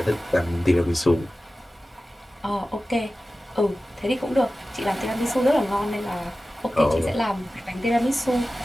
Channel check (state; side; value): normal; both; correlation 0.95